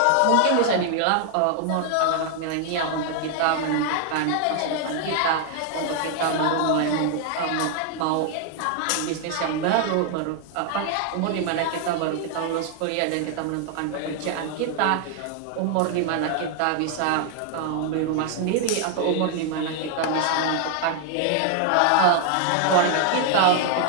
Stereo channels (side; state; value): both; different; correlation 0.00